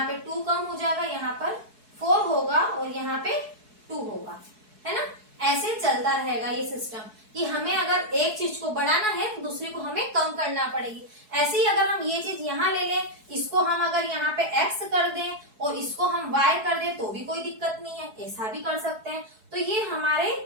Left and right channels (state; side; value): late; left; 4.7 ms